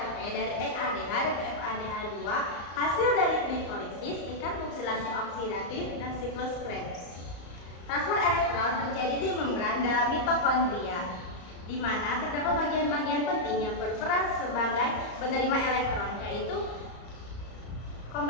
dari NADH dan FADH2 hasil dari glikolisis, tingkat oksidasi oksidatif, dan siklus Krebs. Transport elektron terjadi di membran dalam mitokondria, di mana terdapat bagian-bagian penting yang berperan sebagai penerima elektron, yaitu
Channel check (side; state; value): right; late; 34 ms